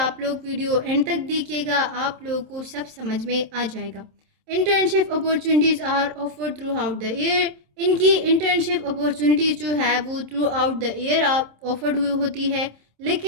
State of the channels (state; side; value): late; left; 27 ms